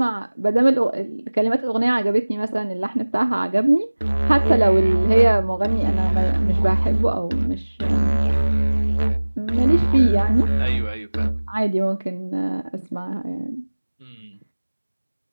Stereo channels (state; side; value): inverted; both; correlation -1.00